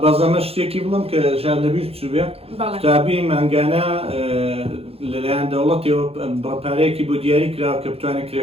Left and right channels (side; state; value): left; late; 0.29 ms